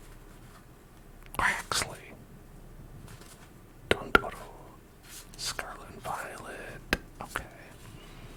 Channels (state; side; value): identical; both; correlation 1.00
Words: Waxley, Dondoro, Scarlet and Violet. Okay.